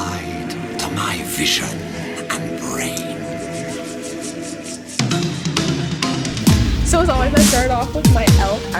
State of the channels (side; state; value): both; identical; correlation 1.00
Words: to my vision and brain. So as always, I started off with my e.l.f.